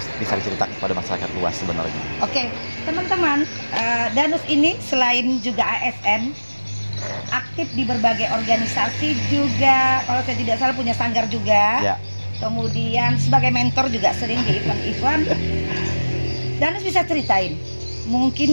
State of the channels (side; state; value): both; inverted; correlation -1.00